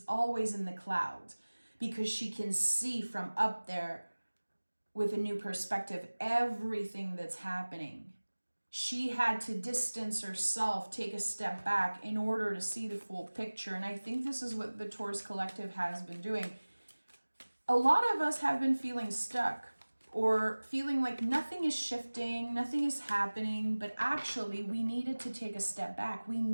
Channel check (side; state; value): both; inverted; correlation -1.00